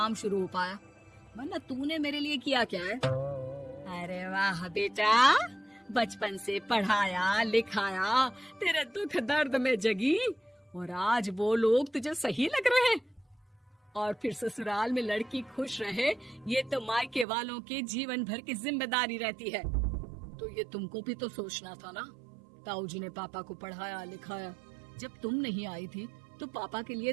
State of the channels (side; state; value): left; drops out; at 17.2 s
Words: शुरू हो पाया, वरना तूने मेरे लिए किया क्या है? अरे वाह बेटा, बचपन से पढ़ाया लिखाया, तेरे दुख दर्द में जगी, और आज वो लोग तुझे सही लग रहे हैं। और फिर ससुराल में लड़की खुश रहे, ये तो मायके वालों की जीवन भर की जिम्मेदारी रहती है। तो ये तुमको भी तो सोचना था ना। ताऊ जी ने पापा को पढ़ाया लिखाया, जब तुम नहीं आई थी तो पापा के लिए